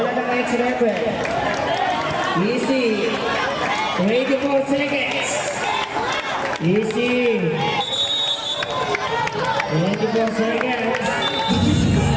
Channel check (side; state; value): both; identical; correlation 1.00